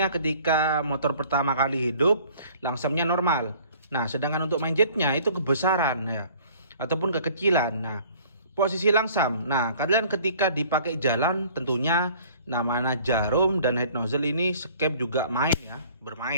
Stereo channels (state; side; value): inverted; both; correlation -0.53